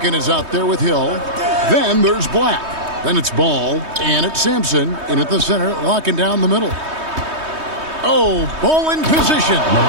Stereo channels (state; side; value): late; left; 3.2 ms